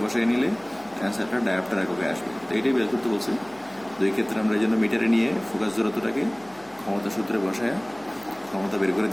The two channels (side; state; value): left; noise; hum, 29 dB below the sound